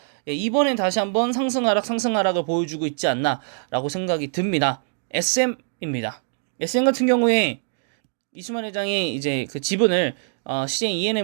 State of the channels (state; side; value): silent; left; digital silence